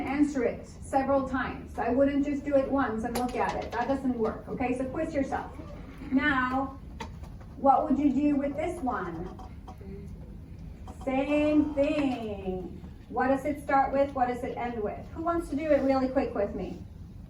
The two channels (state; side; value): identical; both; correlation 1.00